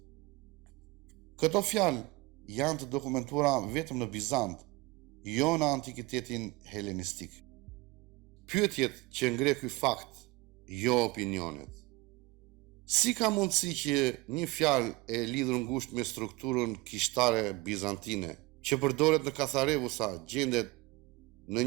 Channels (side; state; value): left; quieter; 22.5 dB